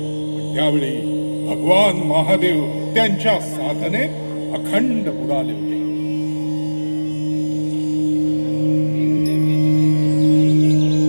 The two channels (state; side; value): inverted; both; correlation -1.00